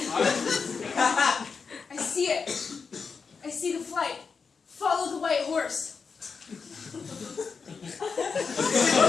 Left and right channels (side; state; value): right; quieter; 5.3 dB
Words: I see it. I see the flight. Follow the white horse.